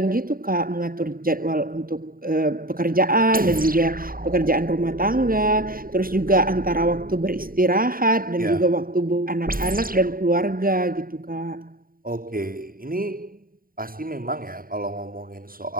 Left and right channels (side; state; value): left; late; 0.42 ms